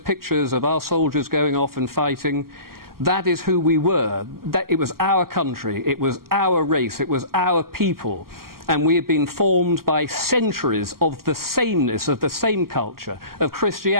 of our soldiers going off and fighting, that is who we were. It was our country, it was our race, it was our people. And we have been formed by centuries of the sameness, of the same culture, of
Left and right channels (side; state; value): left; late; 0.93 ms